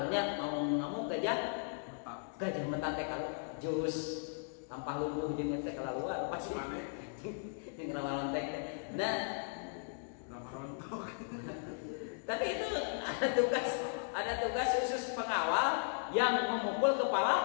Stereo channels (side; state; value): right; silent; digital silence